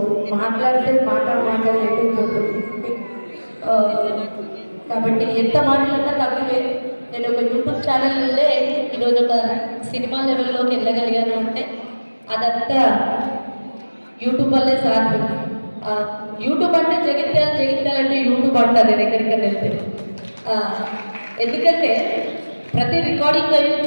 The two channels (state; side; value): inverted; both; correlation -1.00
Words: మాట్లాడితే మాట్లాడలేకపోతుంది కాబట్టి ఎంత మాట్లాడినా తక్కువే. నేను ఒక యూట్యూబ్ ఛానల్ నుండే ఈరోజు ఒక సినిమా లెవెల్లోకి వెళ్ళగలిగాను అంటే అదంతా యూట్యూబ్ వల్లే సాధ్యం. యూట్యూబ్ అంటే జగిత్యాల అంటే యూట్యూబ్ అంటారు నేను ఎక్కడికైనా వెళ్తే. ఎందుకంటే ప్రతి రికార్డింగ్